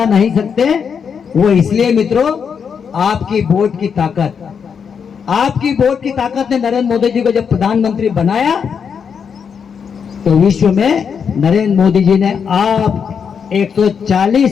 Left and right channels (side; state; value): right; quieter; 6.7 dB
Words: नहीं सकते। वो इसलिए मित्रों, आपकी वोट की ताकत, आपकी वोट की ताकत ने नरेंद्र मोदी जी को जब प्रधानमंत्री बनाया, तो विश्व में नरेंद्र मोदी जी ने आप